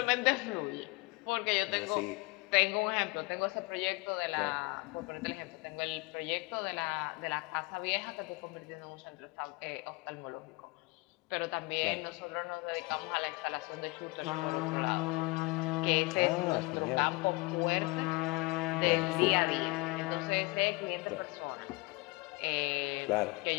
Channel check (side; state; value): right; quieter; 25.1 dB